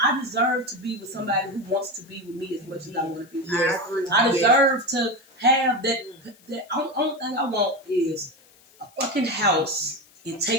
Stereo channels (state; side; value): noise; left; hiss, 28 dB below the sound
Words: I deserve to be with somebody who wants to be with me as much as I want to be with them. I deserve to have that. The only thing I want is a fucking house and